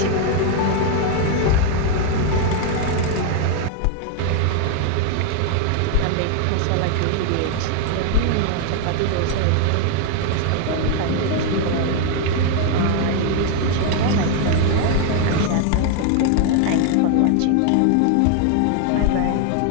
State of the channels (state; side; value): different; both; correlation 0.00